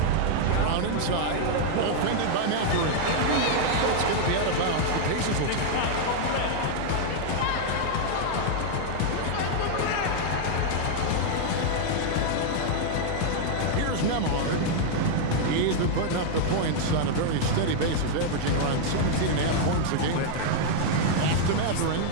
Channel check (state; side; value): different; both; correlation -0.01